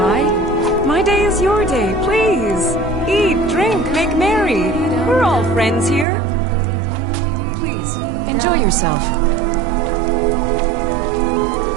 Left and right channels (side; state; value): left; drops out; at 6.1 s